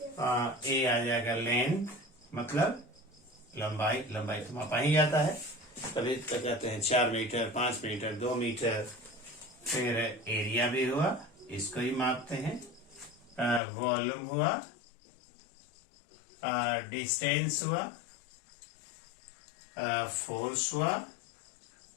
ए आ जाएगा लेंथ, मतलब लंबाई। लंबाई तो मापा ही जाता है, तभी तो कहते हैं 4 मीटर, 5 मीटर, 2 मीटर। फिर एरिया भी हुआ, इसको ही मापते हैं। वॉल्यूम हुआ, डिस्टेंस हुआ, फोर्स हुआ,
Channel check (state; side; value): drops out; right; at 13.6 s